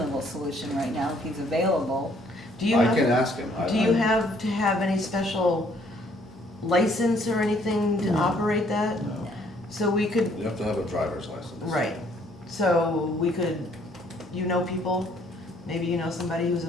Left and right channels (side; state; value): both; normal; correlation 0.64